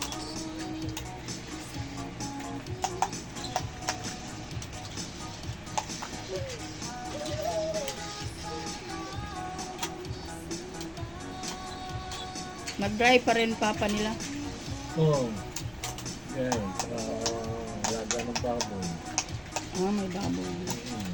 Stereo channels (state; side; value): identical; both; correlation 1.00